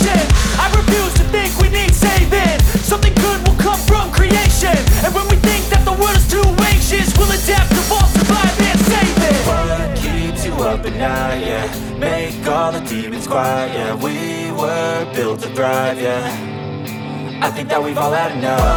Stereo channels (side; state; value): both; identical; correlation 1.00